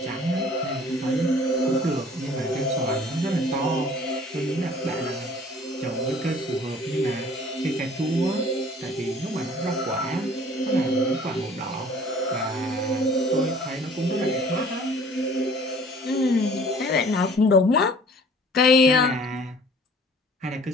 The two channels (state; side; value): normal; both; correlation 0.51